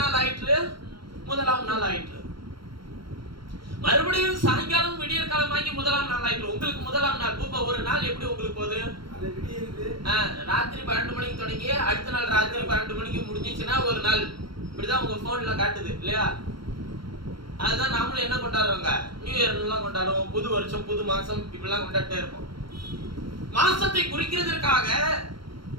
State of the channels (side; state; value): left; late; 0.74 ms